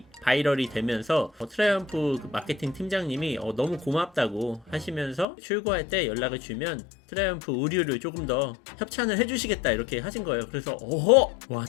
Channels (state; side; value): drops out; right; at 5.2 s